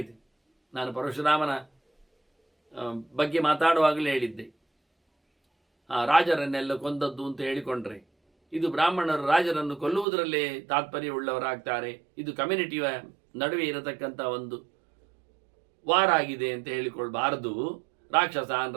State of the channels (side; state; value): left; drops out; at 10.1 s